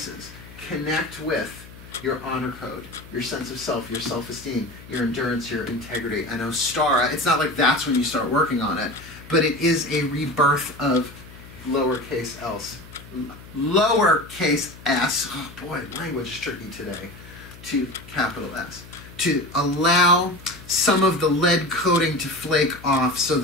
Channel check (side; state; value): left; noise; hum, 18 dB below the sound